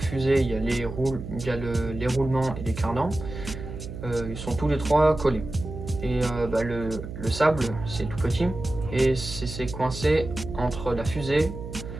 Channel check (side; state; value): right; noise; hum, 9 dB below the sound